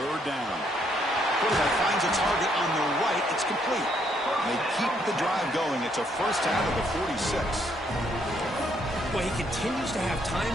down. Quarterback finds a target on the right. It's complete. They keep the drive going. It's a first down of the 46. Well, he continues to have time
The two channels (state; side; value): normal; both; correlation 0.71